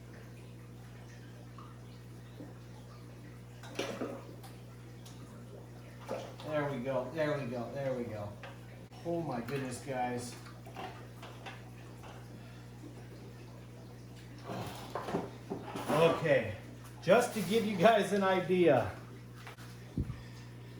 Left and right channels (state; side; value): identical; both; correlation 1.00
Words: There we go, there we go, there we go. Oh my goodness, guys. Okay, just to give you guys an idea,